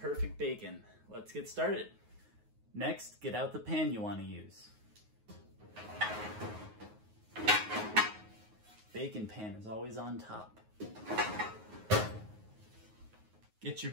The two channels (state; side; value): late; left; 9.5 ms